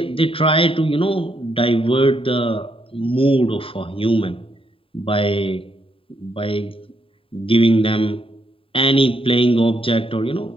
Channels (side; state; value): right; late; 0.26 ms